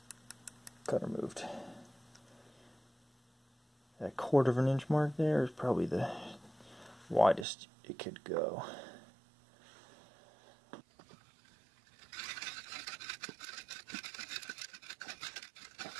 Cutter moved. That 1/4 of an inch mark there is probably the widest it could go.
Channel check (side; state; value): left; drops out; at 7.5 s